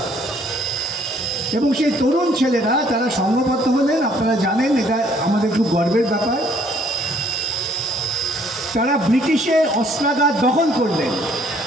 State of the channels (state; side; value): normal; both; correlation 0.63